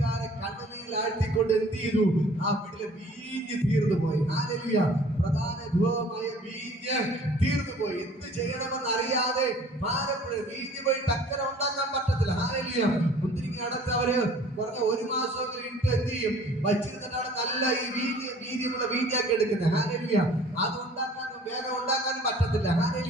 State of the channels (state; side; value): normal; both; correlation 0.51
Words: കണ്ണുനീരിൽ ആഴ്ത്തിക്കൊണ്ട് എന്ത് ചെയ്തു? ആ വീട്ടിലെ വീഞ്ഞ് തീർന്നു പോയി. ഹല്ലേലൂയ. പ്രധാന ധൂപമായ വീഞ്ഞ് തീർന്നു പോയി. എന്ത് ചെയ്യണമെന്ന് അറിയാതെ ഭാരപ്പെടും. വീഞ്ഞ് പോയി ടക്കര ഉണ്ടാക്കാൻ പറ്റത്തില്ല. ഹല്ലേലൂയ. മുന്തിരിങ്ങ അടച്ച് അവര് പറഞ്ഞ 1 മാസമെങ്കിലും ഇട്ട് എന്ത് ചെയ്യും? വച്ചിരുന്നിട്ടാണ് നല്ല ഈ വീര്യമുള്ള വീഞ്ഞാക്കി എടുക്കുന്നത്. ഹല്ലേലൂയ. അത് ഉണ്ടാക്കാനും വേഗം ഉണ്ടാക്കാനും പറ്റത്തില്ല.